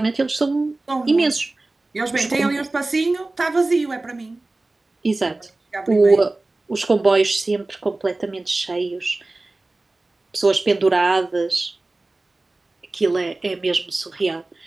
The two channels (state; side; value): quieter; left; 3.1 dB